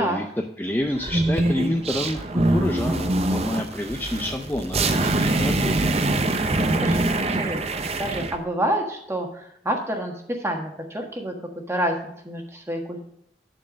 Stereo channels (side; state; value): both; normal; correlation 0.67